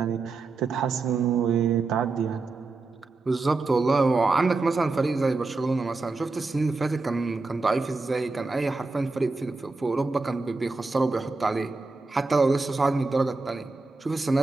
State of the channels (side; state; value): left; quieter; 3.7 dB